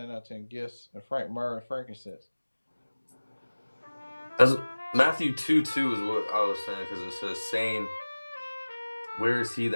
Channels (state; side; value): inverted; both; correlation -1.00